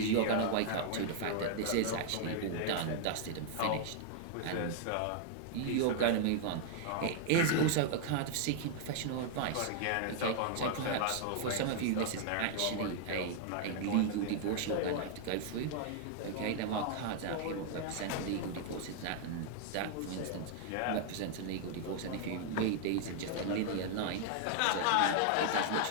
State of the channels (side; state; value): both; different; correlation 0.00